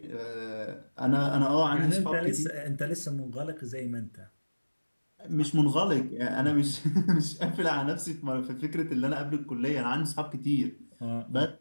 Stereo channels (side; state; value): both; inverted; correlation -1.00